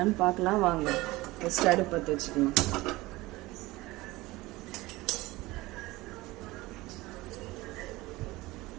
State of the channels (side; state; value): left; quieter; 20.0 dB